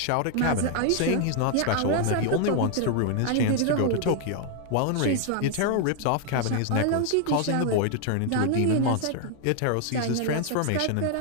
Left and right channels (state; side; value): different; both; correlation 0.00